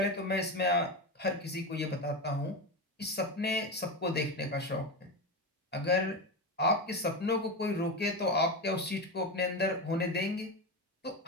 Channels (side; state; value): both; normal; correlation 0.18